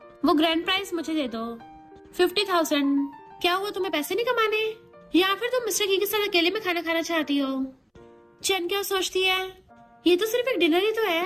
वो ग्रैंड प्राइज मुझे दे दो 50,000। क्या हुआ तुम्हें पैसे नहीं कमाने या फिर तुम मिस्टर की के साथ अकेले में खाना खाना चाहती हो? चैनिका सोचती है ये तो सिर्फ एक डिनर ही तो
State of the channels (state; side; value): identical; both; correlation 1.00